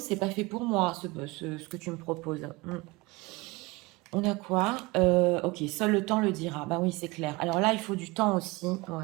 pas fait pour moi ce que tu me proposes. On a quoi? Ok, seul le temps le dira. Bah oui, c'est clair. Alors là, il faut du temps aussi.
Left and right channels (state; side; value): quieter; left; 23.8 dB